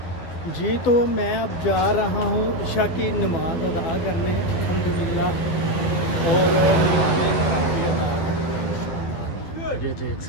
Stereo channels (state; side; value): late; right; 12 ms